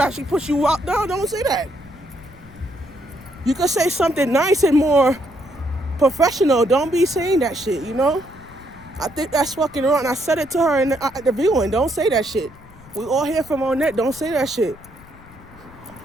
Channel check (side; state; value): left; noise; rumble, 22 dB below the sound